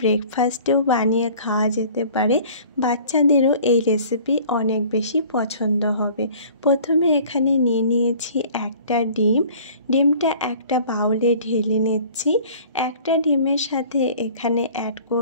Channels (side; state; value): both; inverted; correlation -0.49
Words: বানিয়ে খাওয়া যেতে পারে। বাচ্চাদেরও এই রেসিপি অনেক বেশি পছন্দ হবে। প্রথমে এখানে নিয়ে নিয়েছি একটা ডিম। ডিমটা একটা বাউলে ঢেলে নিচ্ছি। একটা ডিমের সাথে এখানে অ্যাড